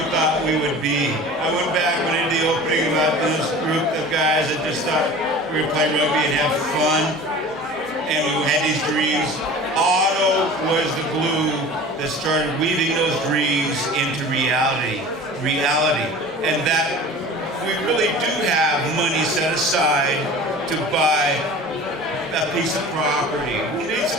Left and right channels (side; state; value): both; normal; correlation 0.39